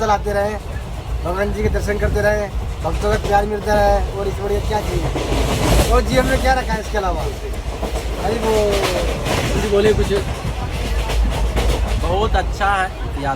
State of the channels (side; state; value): both; identical; correlation 1.00